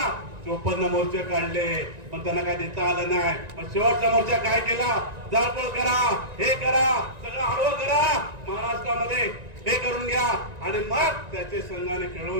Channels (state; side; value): late; left; 1.9 ms